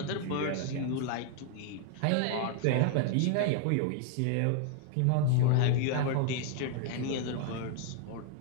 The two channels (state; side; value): different; both; correlation 0.00